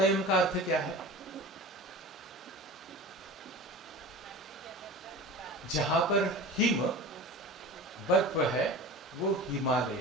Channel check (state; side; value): normal; both; correlation 0.35